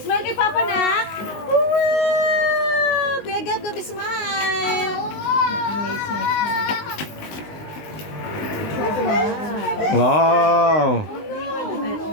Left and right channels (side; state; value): right; late; 19 ms